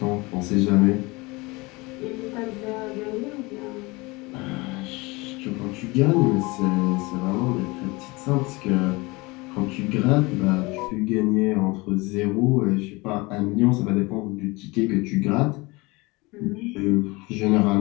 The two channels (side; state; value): right; quieter; 24.3 dB